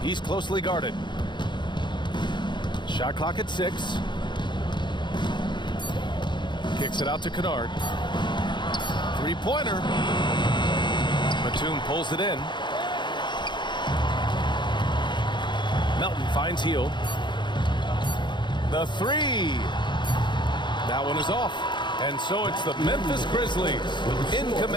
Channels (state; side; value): late; right; 0.22 ms